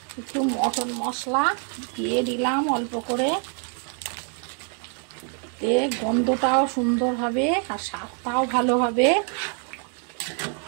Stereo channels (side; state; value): left; quieter; 39.7 dB